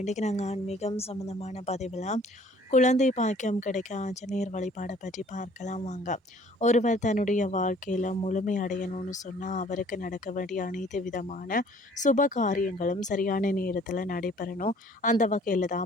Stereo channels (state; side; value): normal; both; correlation 0.55